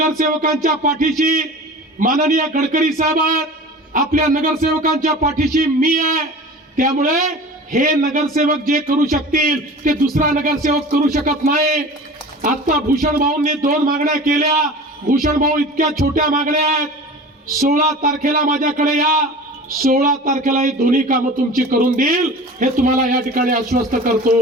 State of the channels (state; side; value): normal; both; correlation 0.38